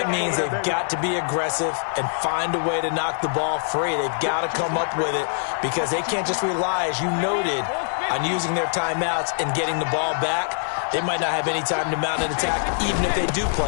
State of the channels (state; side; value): silent; right; digital silence